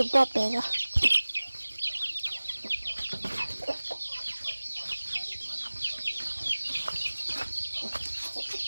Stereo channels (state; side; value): inverted; both; correlation -1.00